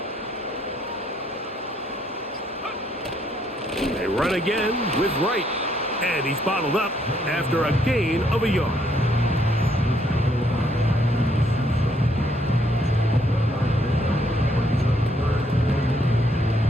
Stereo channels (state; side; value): normal; both; correlation 0.70